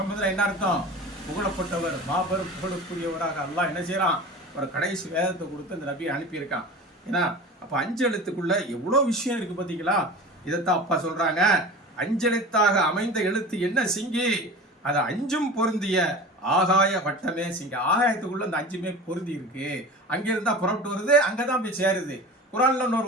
என்ன அர்த்தம், புகழப்பட்டவர், மாபெரும் புகழுக்குரியவராக அல்லாஹ் என்ன செய்யறான், ஒரு கடைசி வேதத்தை கொடுத்து அந்த நபியை அனுப்பியிருக்கான். ஏன்னா அப்போ 5 எழுத்துக்குள்ள எவ்வளோ விஷயம் இருக்கு பார்த்தீங்களா. இதைத்தான் அப்பா சொல்றாங்க, 5 எழுத்தாக அமைந்த எழுத்து என்ன சிங்கி, அதை 5ம் பொருந்திய ஆகாய வட்டமே சிங்கி. ஆகாயத்துக்குள்ள அந்த 5மே பொருந்தி இருக்கு. அங்கிருந்தா புறப்பட்டு வருது, அங்கதான் போய் சேருது. குரான்ல இன்னொரு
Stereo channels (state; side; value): normal; both; correlation 0.35